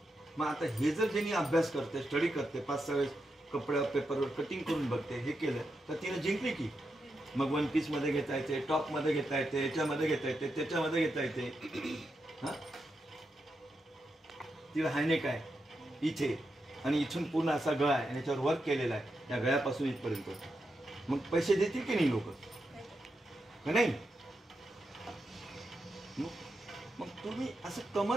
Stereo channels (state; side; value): normal; both; correlation 0.86